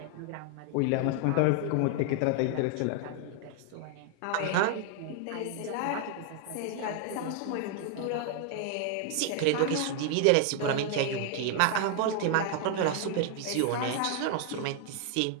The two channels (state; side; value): different; both; correlation 0.00